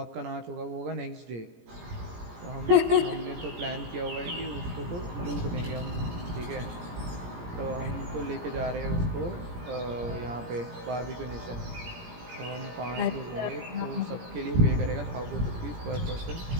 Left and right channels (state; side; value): late; left; 17 ms